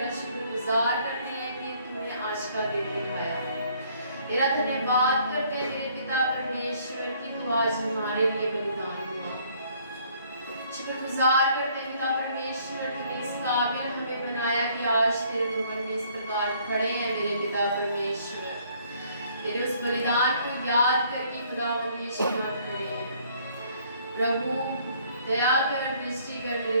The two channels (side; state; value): both; inverted; correlation -0.62